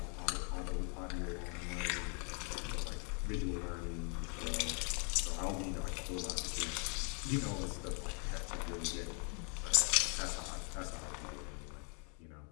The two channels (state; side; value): quieter; right; 36.6 dB